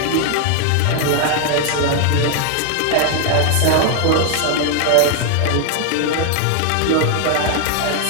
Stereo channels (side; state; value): both; different; correlation 0.00